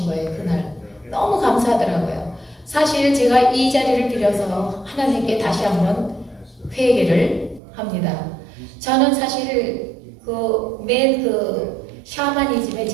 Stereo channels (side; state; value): left; drops out; at 7.6 s